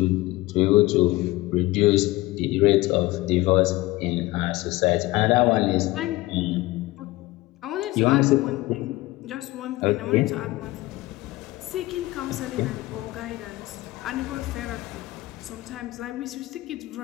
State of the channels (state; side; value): quieter; right; 19.3 dB